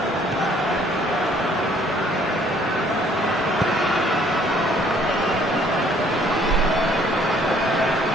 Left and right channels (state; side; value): normal; both; correlation 0.60